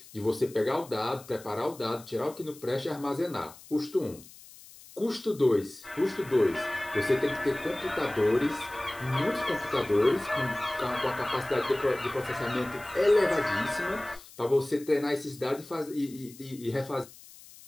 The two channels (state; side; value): noise; left; hiss, 20 dB below the sound